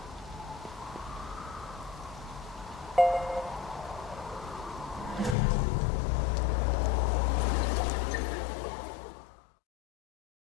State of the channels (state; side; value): drops out; right; at 5.4 s